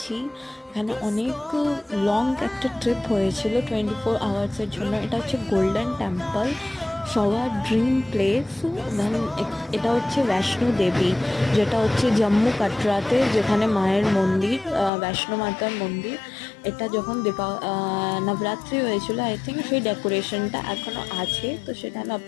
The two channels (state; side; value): drops out; right; at 14.9 s